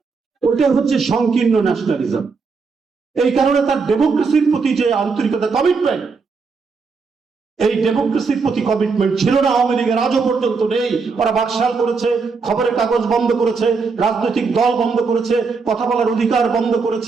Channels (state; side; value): quieter; left; 4.8 dB